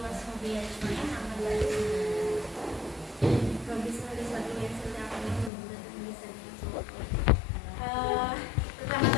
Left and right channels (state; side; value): drops out; right; at 5.5 s